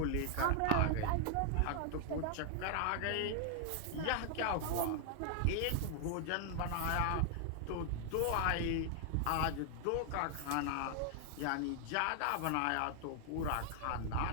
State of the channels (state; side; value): different; both; correlation 0.00